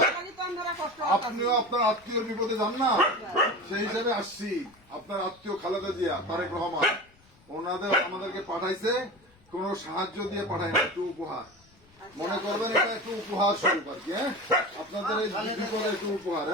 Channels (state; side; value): noise; left; rumble, 30 dB below the sound